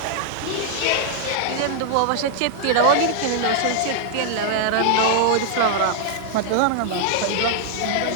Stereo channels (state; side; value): different; both; correlation -0.01